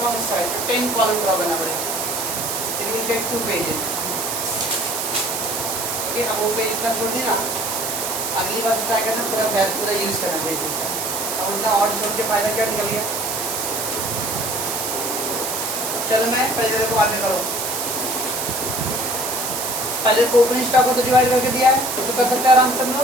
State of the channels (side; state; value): right; noise; hiss, 2 dB below the sound